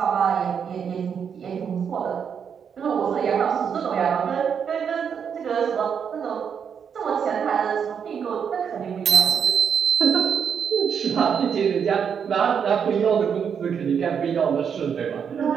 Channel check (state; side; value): quieter; left; 7.3 dB